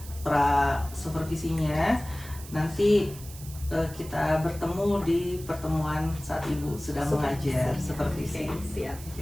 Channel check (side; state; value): right; noise; hiss, 16 dB below the sound